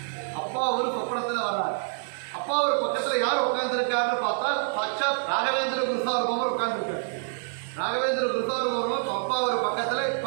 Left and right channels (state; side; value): silent; left; digital silence